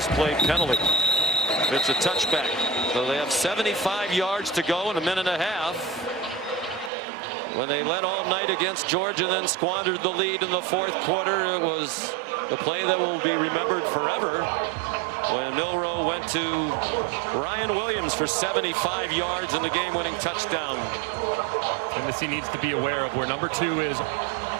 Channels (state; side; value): drops out; left; at 6.9 s